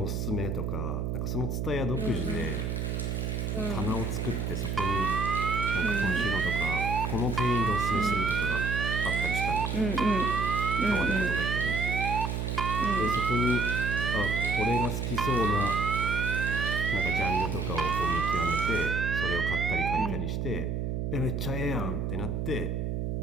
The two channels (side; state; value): right; noise; hum, 1 dB below the sound